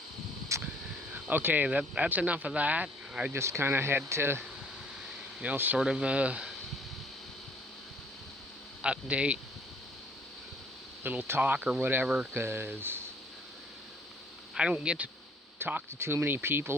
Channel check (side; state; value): both; normal; correlation 0.59